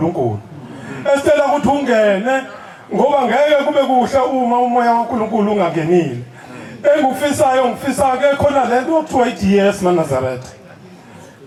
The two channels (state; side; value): identical; both; correlation 1.00